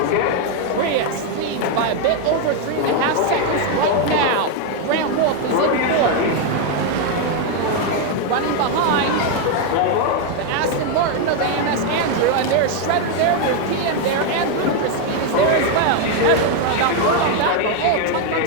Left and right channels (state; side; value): different; both; correlation 0.01